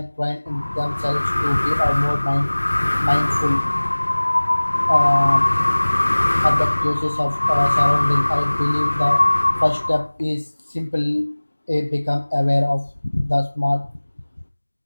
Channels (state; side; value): inverted; both; correlation -1.00